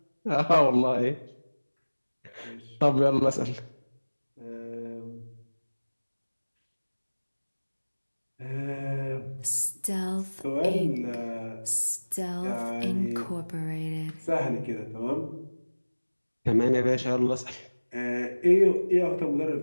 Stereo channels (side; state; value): both; inverted; correlation -1.00